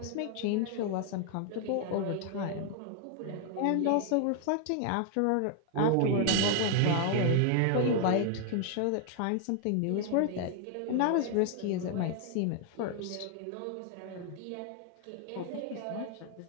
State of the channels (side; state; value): both; different; correlation 0.00